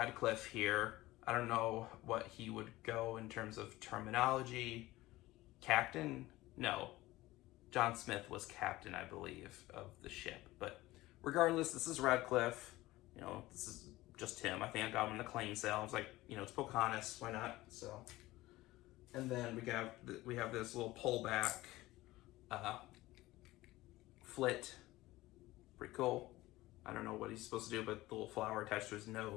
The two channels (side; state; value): right; quieter; 18.1 dB